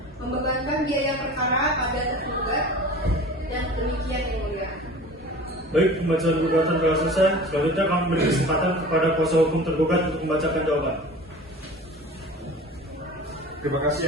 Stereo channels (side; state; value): both; normal; correlation 0.39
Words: membebankan biaya perkara pada tergugat, dan demikian yang mulia. Baik, pembacaan gugatan telah selesai. Selanjutnya kami beri kesempatan kepada kuasa hukum tergugat untuk membacakan jawaban. Terima kasih